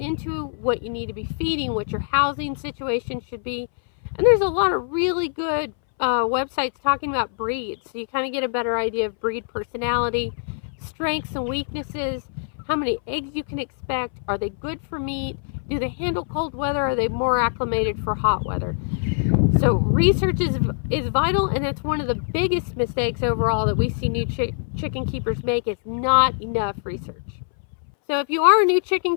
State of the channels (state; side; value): silent; right; 61 dB below the other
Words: into, what you need to be feeding, what your housing situation should be. And there's a lot of really good websites talking about breeds, so you kind of get a better idea of breed personality, strengths and weaknesses, how many eggs you can expect, are they good for meat, do they handle cold weather, are they more acclimated for hot weather. So research is vital, and it's one of the biggest mistakes overall that we see new chicken keepers make, is not enough research. So if you are a new